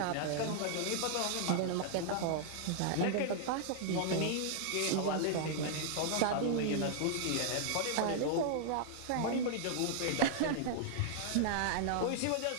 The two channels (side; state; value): both; different; correlation 0.00